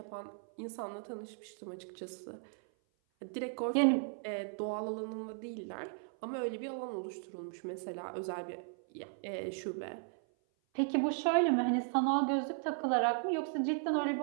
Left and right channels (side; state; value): left; silent; 54 dB below the other